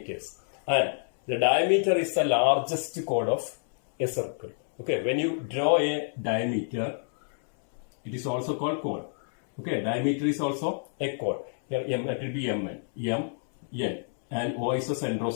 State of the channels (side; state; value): right; silent; 59 dB below the other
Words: and the diameter is the largest chord of a circle. Okay, when you draw a diameter, it is also called chord. Okay, diameter is also a chord. Here M, it will be Mn, M, N, and O is the center of